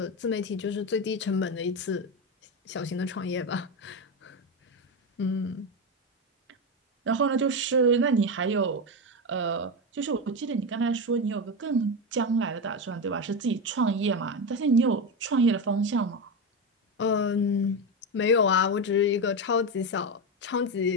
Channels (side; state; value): both; normal; correlation 0.14